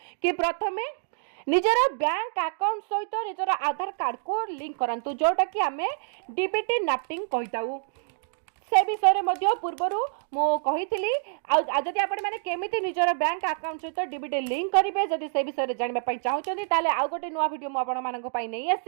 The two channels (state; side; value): silent; left; digital silence